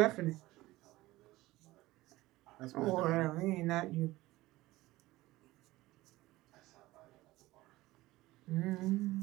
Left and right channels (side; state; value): left; quieter; 18.2 dB